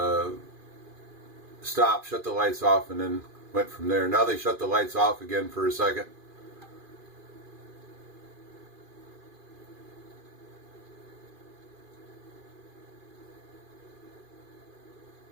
stopped, shut the lights off, and then went from there. Now they shut the lights off again for a second.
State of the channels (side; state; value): left; late; 2.4 ms